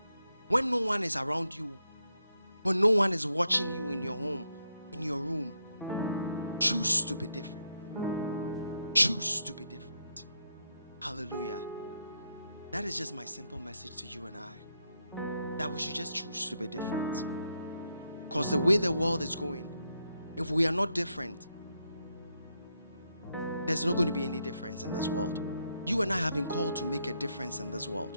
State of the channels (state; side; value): inverted; both; correlation -0.80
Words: When no one is around you, when no one is watching you in your home, in your room, choose to be different. Choose to be different. Hallelujah. That is just my simple message to you and I. That we should just choose to be different. Because the way the world is going, if we are not different, there's not going to be any difference in this world. You and I have been called to make a difference in this